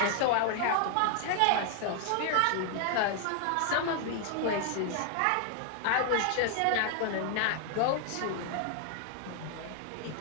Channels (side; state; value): both; different; correlation 0.00